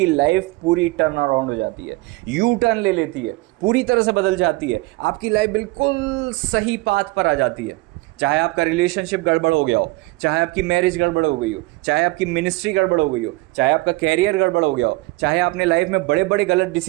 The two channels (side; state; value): left; quieter; 21.9 dB